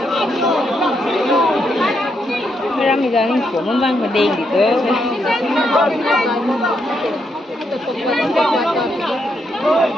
Ra mình giờ mình của mâm vang và đèn thì tới.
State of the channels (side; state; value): both; normal; correlation 0.79